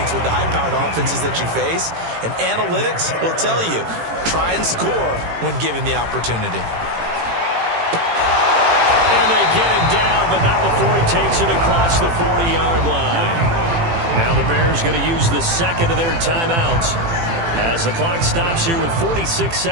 with the high-powered offenses that you face. And analytics will tell you, try and score when given the opportunity. And they get him down, but not before he takes it across the 40-yard line. Now the Bears going to use the second of their timeouts as the clock stops here with 46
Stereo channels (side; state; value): left; late; 18 ms